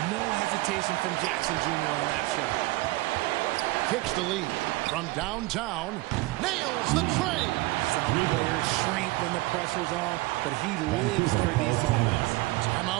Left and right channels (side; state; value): left; quieter; 20.7 dB